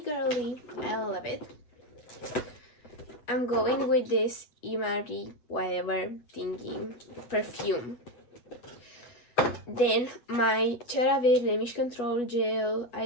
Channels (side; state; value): right; late; 8.2 ms